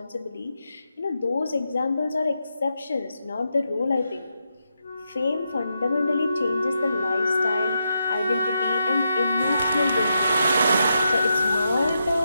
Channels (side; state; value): both; inverted; correlation -0.84